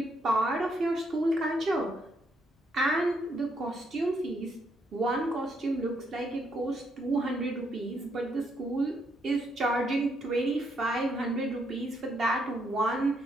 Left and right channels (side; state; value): both; normal; correlation 0.75